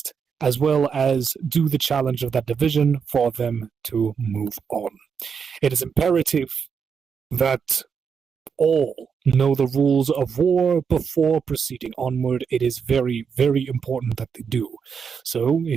as well as do the challenge of that division for them to move on. It is imperative that all know the rules of war before proceeding onward. It is very, very important that they do. So,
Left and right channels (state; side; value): quieter; left; 6.4 dB